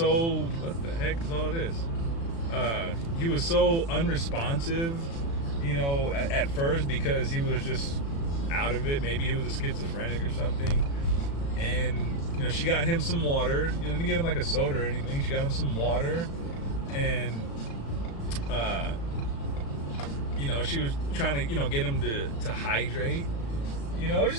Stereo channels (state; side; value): late; right; 36 ms